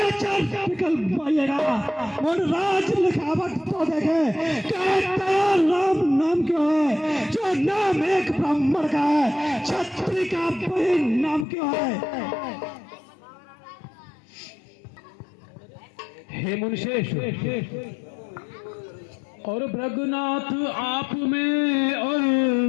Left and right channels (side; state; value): right; drops out; at 11.5 s